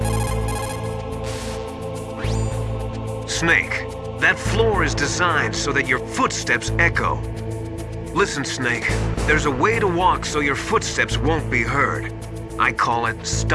Snake, that floor is designed so that your footsteps echo. Listen, Snake, there's a way to walk so your footsteps won't be heard. I call it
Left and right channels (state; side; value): identical; both; correlation 1.00